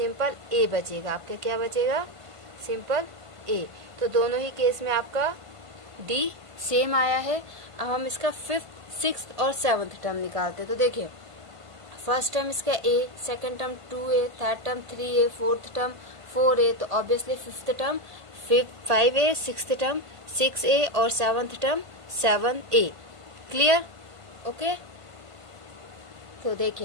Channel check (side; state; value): left; late; 1.5 ms